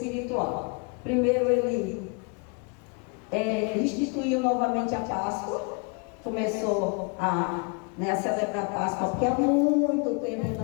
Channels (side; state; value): right; quieter; 34.7 dB